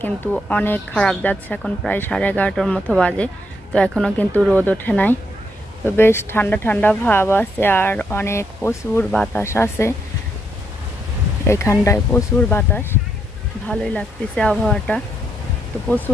কিন্তু অনেক খারাপ যাচ্ছে, এখন প্রায় 11:30টার মতো বাজে। তো এখনও কিন্তু রোদ ওঠে নাই। তো বেশ ঠান্ডা ঠান্ডা ভাব আছে আর অনেক প্রচুর বাতাস আছে। এখানটায় প্রচুর বাতাস, ভালোই লাগতেছে আবহাওয়াটা। তো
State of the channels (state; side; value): normal; both; correlation 0.77